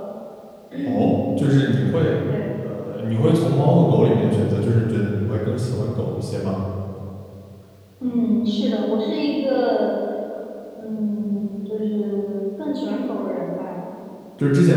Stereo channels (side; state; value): both; identical; correlation 1.00